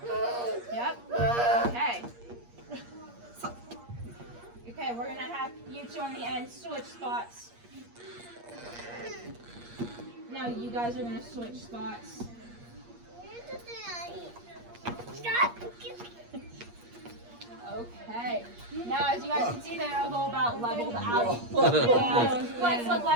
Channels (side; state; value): left; late; 8.5 ms